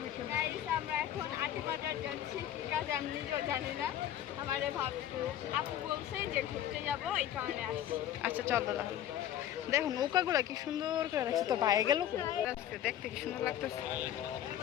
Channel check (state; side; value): quieter; right; 11.4 dB